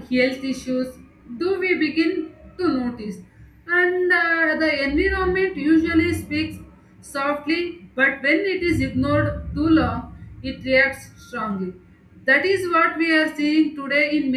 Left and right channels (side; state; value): both; identical; correlation 1.00